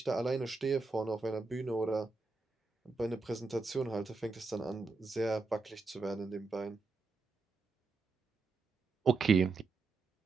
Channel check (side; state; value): left; quieter; 4.1 dB